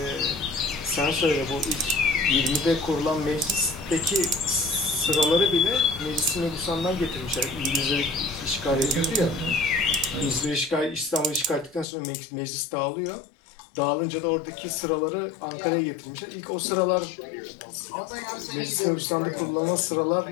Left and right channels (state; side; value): drops out; right; at 11.9 s